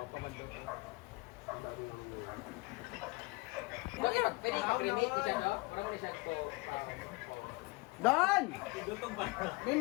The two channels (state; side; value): quieter; right; 25.5 dB